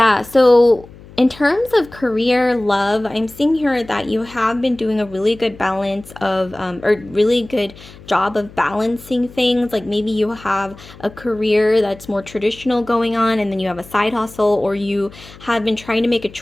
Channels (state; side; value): noise; left; hum, 20 dB below the sound